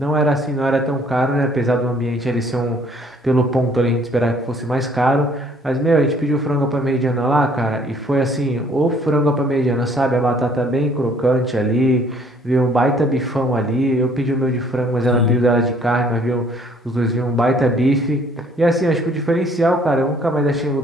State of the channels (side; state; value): both; normal; correlation 0.60